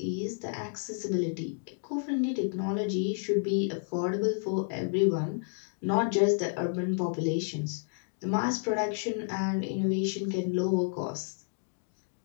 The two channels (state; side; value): silent; right; digital silence